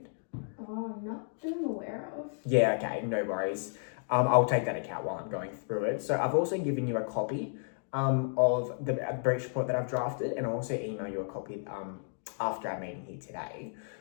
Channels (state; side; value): silent; right; digital silence